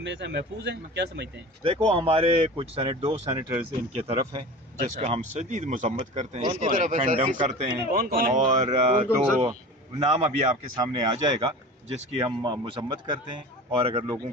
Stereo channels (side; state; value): both; normal; correlation 0.35